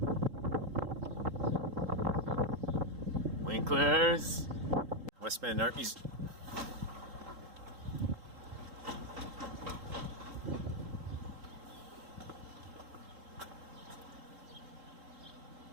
Winklers. West Bend Art Museum.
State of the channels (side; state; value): left; late; 3.8 ms